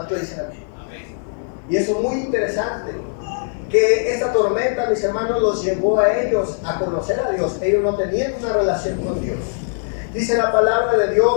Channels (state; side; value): silent; right; 66 dB below the other